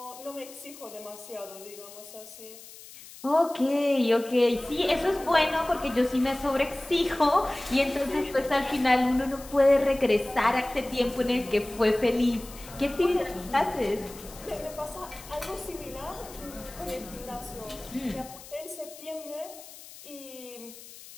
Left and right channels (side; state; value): left; noise; hiss, 17 dB below the sound